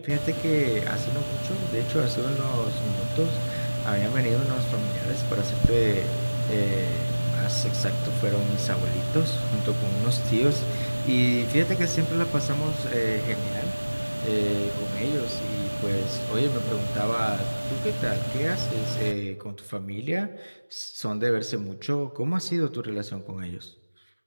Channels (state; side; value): inverted; both; correlation -1.00